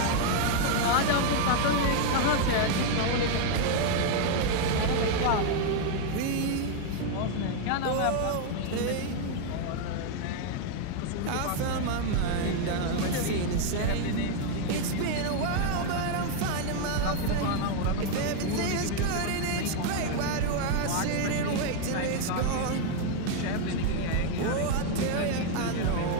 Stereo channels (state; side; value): different; both; correlation 0.01